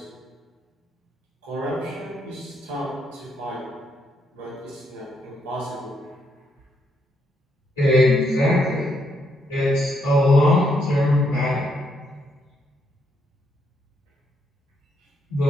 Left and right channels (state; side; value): normal; both; correlation 0.76